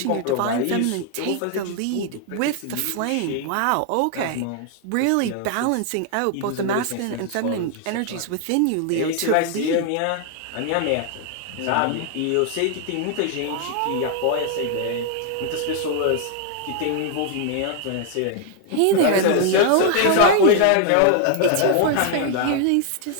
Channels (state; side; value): different; both; correlation 0.00